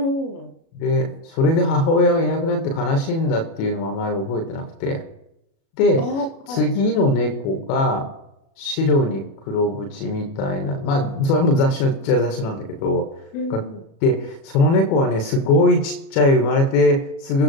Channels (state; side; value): late; right; 36 ms